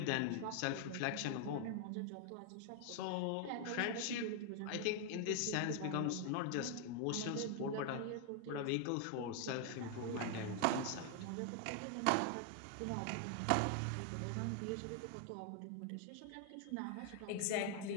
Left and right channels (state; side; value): different; both; correlation 0.00